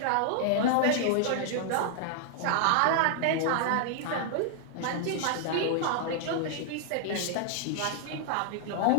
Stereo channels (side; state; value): both; different; correlation 0.00